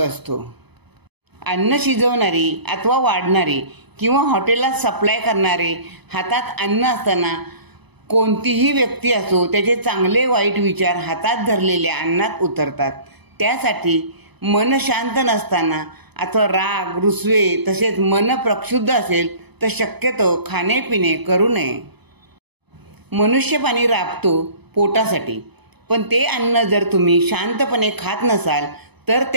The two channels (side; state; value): left; late; 0.99 ms